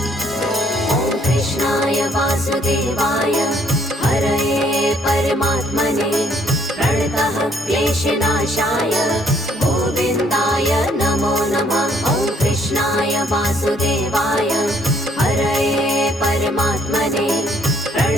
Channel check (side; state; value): both; normal; correlation 0.65